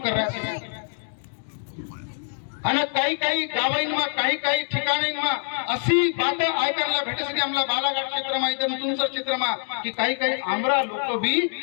कर रहा है आणि काही काही गावांना काही काही ठिकाणींना अशी बात ऐकायला भेटते आम्हाला बालाघाट क्षेत्रमा इथं तुमचं क्षेत्रमा की काही काही आमरा लोक भी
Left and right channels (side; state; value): right; silent; digital silence